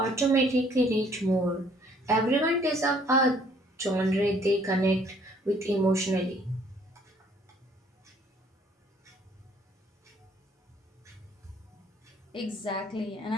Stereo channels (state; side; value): normal; both; correlation 0.61